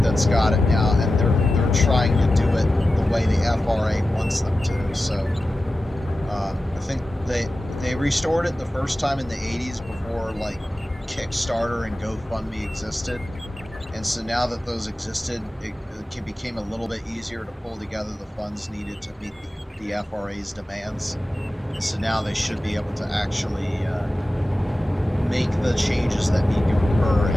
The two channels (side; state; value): both; normal; correlation 0.94